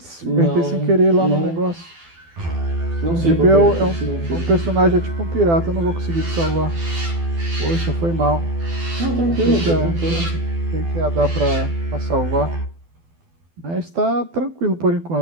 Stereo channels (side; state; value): left; late; 12 ms